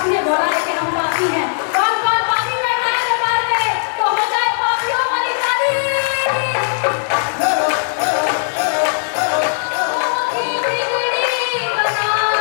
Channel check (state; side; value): silent; right; 63 dB below the other